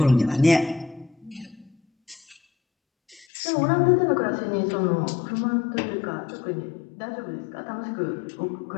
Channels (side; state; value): right; drops out; at 3.2 s